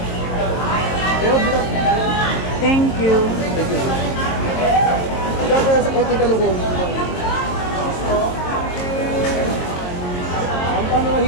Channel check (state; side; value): late; right; 22 ms